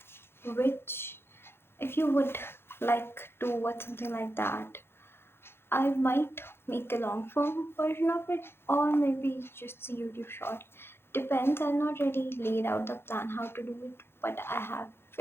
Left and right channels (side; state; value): right; late; 0.11 ms